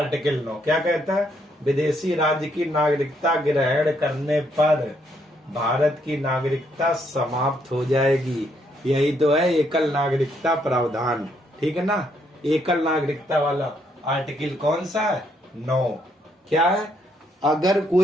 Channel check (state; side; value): normal; both; correlation 0.73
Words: 9 क्या कहता है, विदेशी राज्य की नागरिकता ग्रहण करने पर भारत की नागरिकता समाप्त हो जाएगी। यही तो है एकल नागरिकता प्रावधान, ठीक है ना, एकल नागरिकता वाला आर्टिकल कौन सा है, 9। क्या है, अगर